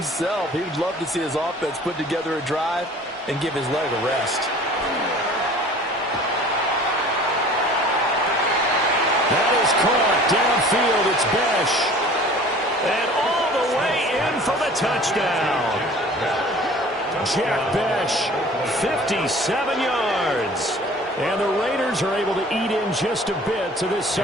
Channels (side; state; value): both; normal; correlation 0.47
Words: He would love to see his offense put together a drive and give his leg a rest. That is caught downfield. It's Besh. And all the way in for the touchdown. Jack Besh, 57 yards. And the Raiders are able to eat in just a bit to this